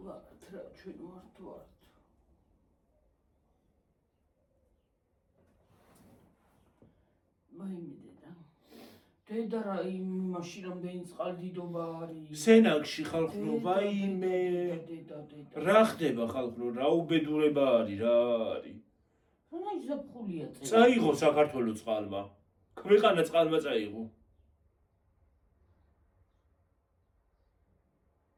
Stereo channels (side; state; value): both; identical; correlation 1.00